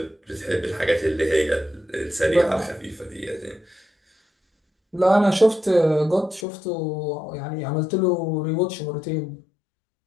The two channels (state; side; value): drops out; right; at 6.5 s